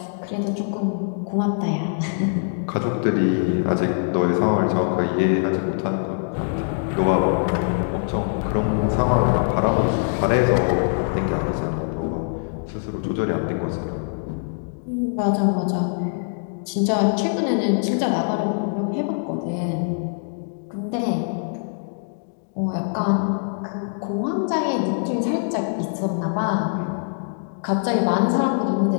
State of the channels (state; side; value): silent; right; digital silence